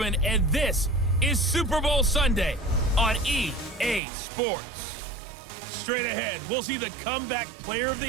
and this is Super Bowl Sunday on EA Sports. Straight ahead, we'll see the comeback player of the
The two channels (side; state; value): left; drops out; at 4.0 s